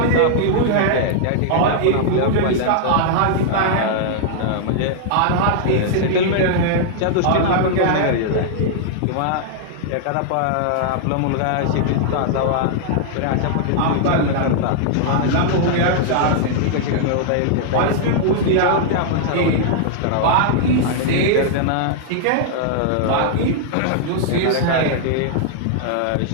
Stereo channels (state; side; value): different; both; correlation -0.01